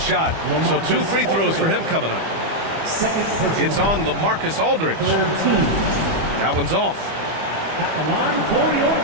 So 2 free throws for him coming up. It's on LaMarcus Aldridge. That one's off. At the line for your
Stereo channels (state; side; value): late; left; 25 ms